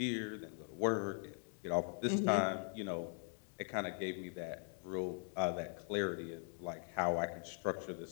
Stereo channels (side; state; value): right; silent; 50 dB below the other